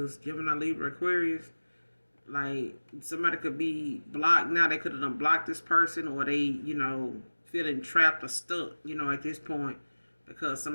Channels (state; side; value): inverted; both; correlation -1.00